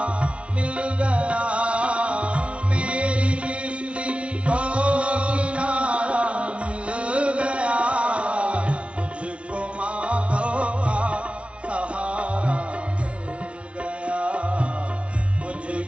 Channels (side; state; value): left; late; 0.061 ms